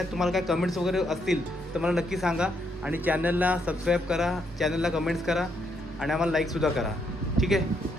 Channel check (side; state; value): both; normal; correlation 0.75